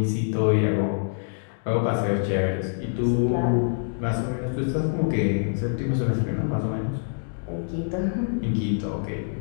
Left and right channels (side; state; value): right; silent; digital silence